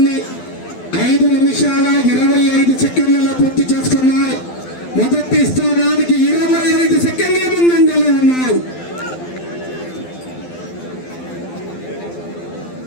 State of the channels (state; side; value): late; right; 12 ms